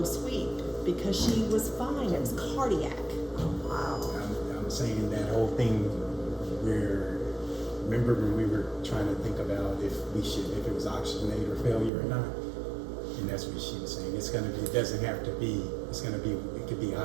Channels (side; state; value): left; drops out; at 11.9 s